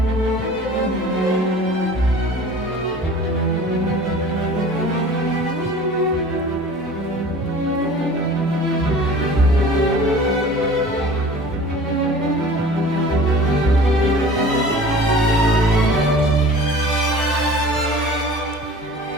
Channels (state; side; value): normal; both; correlation 0.43